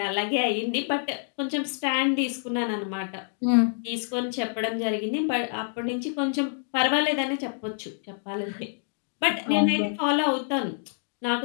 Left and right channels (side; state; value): right; silent; digital silence